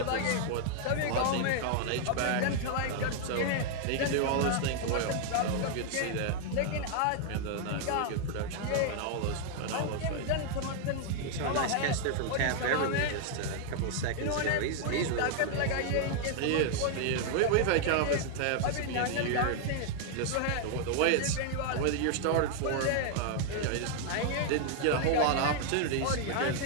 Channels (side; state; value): both; different; correlation 0.00